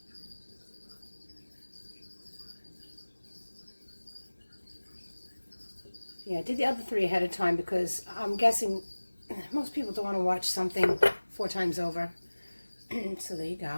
Yeah, I did the other 3 ahead of time because I'm guessing most people don't want to watch something 4 times over. So there you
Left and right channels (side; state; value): both; inverted; correlation -1.00